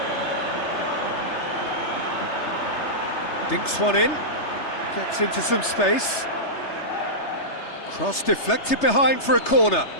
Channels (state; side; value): late; right; 3.3 ms